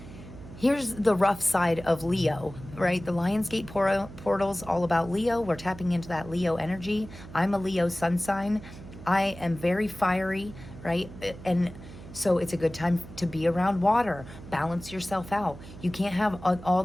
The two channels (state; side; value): noise; right; hum, 15 dB below the sound